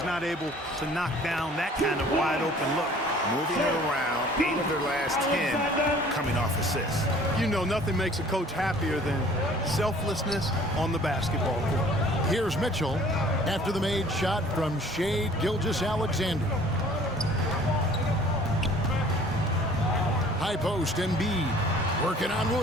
not able to knock down that kind of wide-open look. Moving it around, 8 of their last 10 coming off assists. You know, nothing makes a coach happier than selflessness on the basketball court. Here's Mitchell after the made shot from Shai Gilgeous-Alexander. High post, Embiid working on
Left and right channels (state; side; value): normal; both; correlation 0.52